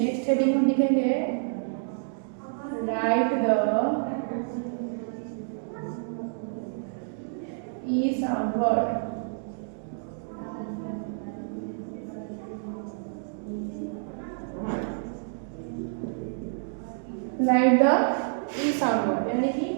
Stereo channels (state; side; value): silent; left; digital silence